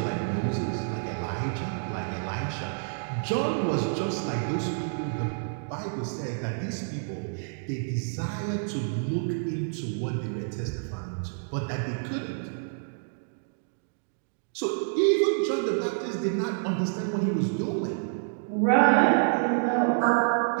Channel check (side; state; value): left; silent; digital silence